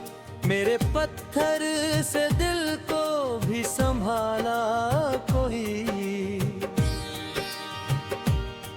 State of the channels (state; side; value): identical; both; correlation 1.00